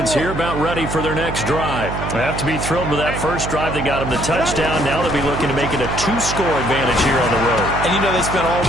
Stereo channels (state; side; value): noise; right; hum, 6 dB below the sound